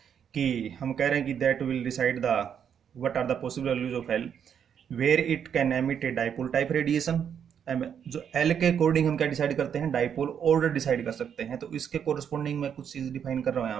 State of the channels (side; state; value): left; quieter; 8.2 dB